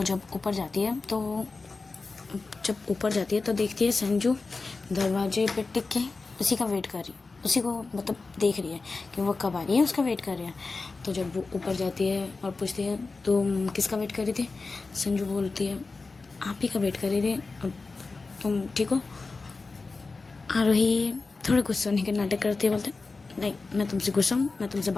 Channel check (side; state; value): right; quieter; 3.9 dB